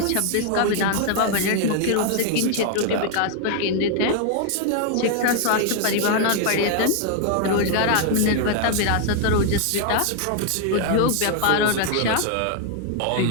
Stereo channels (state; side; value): different; both; correlation 0.00